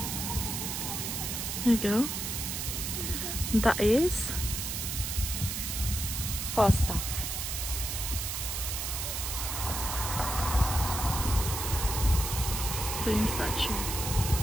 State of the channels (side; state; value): right; noise; hiss, 3 dB below the sound